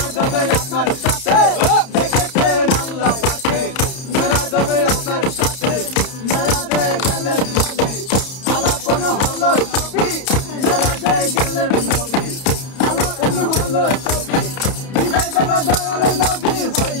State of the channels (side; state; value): right; late; 31 ms